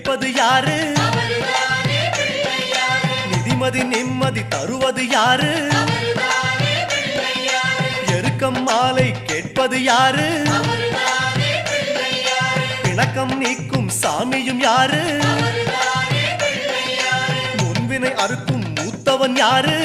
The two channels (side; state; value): both; identical; correlation 1.00